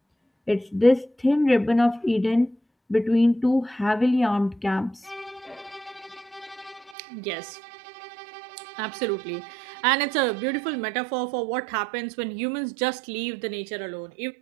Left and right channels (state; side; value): drops out; left; at 7.0 s